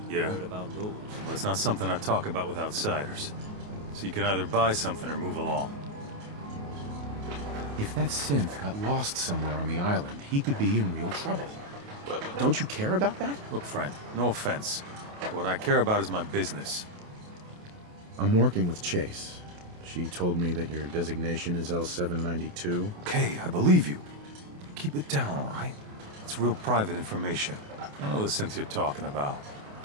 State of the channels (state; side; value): late; left; 28 ms